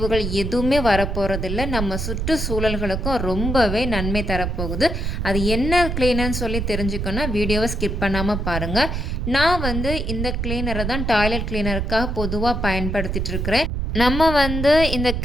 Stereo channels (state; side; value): noise; right; rumble, 2 dB below the sound